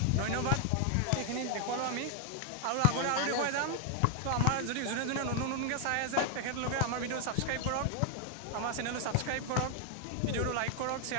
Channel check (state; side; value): different; both; correlation 0.00